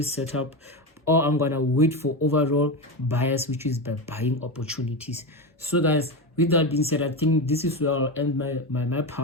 setup, or I'm gonna wait for overall bias, which is by buying opportunities. So guys, with that being said, I think this is where I'll end my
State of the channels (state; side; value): normal; both; correlation 0.17